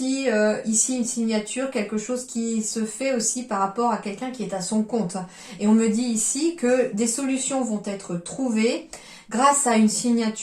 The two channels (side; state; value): both; identical; correlation 1.00